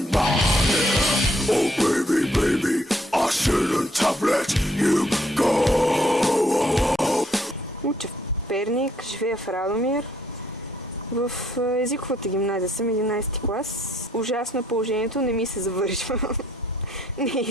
right here? Oh baby, baby, I shouldn't have let you go. Уча в Перник, живея в Радомир. В езиковата гимназия съм 11 клас. Ужасно е положението, не ми се завършва. Не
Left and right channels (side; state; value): both; normal; correlation 0.68